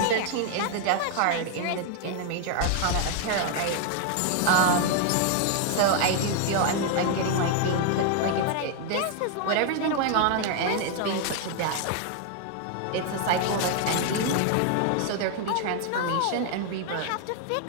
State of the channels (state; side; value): different; both; correlation 0.00